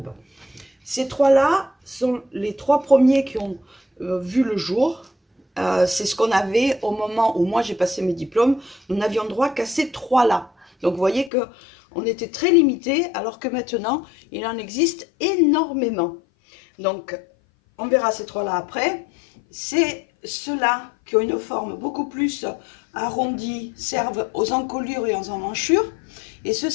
Ces trois-là sont les trois premiers qui ont vu le jour. C'est ce qu'on avait au moment où moi j'ai passé mes diplômes. Nous n'avions droit qu'à ces trois-là. Donc vous voyez que on était très limité, alors que maintenant il en existe énormément. Donc on verra ces trois-là après. C'est ceux-là qui ont une forme beaucoup plus arrondie, servent aux encolures et aux emmanchures. Et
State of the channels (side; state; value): right; drops out; at 11.3 s